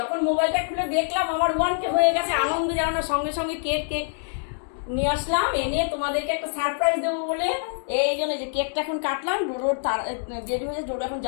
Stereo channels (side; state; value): right; silent; digital silence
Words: মোবাইলটা খুলে দেখলাম আমার 1K হয়ে গেছে, আনন্দ যেন না, সঙ্গে সঙ্গে কেক নিয়ে আসলাম, এনে তোমাদেরকে একটা সারপ্রাইজ দেবো বলে। এই জন্য যে কেকটা এখন কাটলাম, ডোডোর দেরি হয়েছে, ডোডো এখন